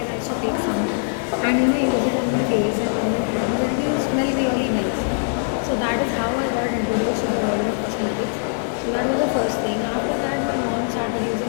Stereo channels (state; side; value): silent; right; 56 dB below the other